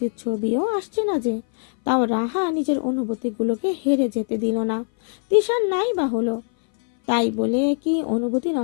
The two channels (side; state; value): right; silent; 59 dB below the other